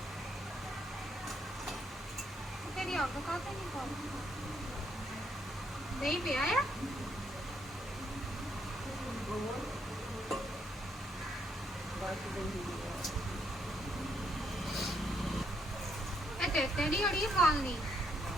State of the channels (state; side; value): normal; both; correlation 0.74